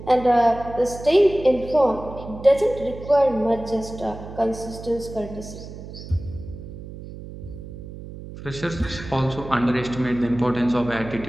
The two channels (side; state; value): right; noise; hum, 13 dB below the sound